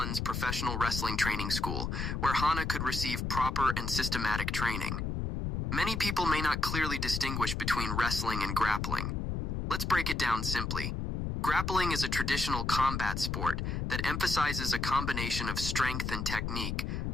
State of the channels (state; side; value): noise; left; rumble, 2 dB below the sound